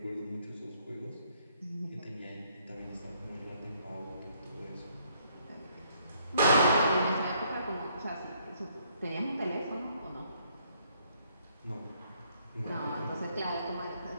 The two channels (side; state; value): both; inverted; correlation -0.68